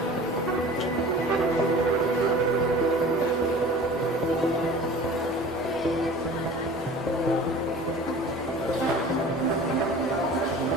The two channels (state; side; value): normal; both; correlation 0.42